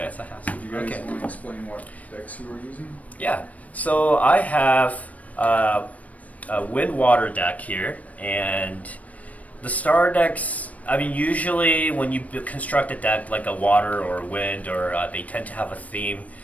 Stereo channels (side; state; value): right; late; 0.069 ms